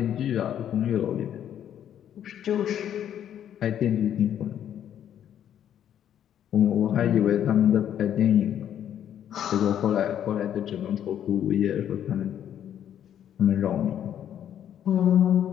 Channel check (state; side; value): quieter; right; 10.1 dB